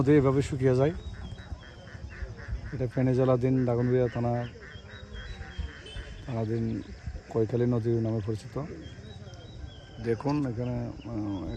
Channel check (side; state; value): both; identical; correlation 1.00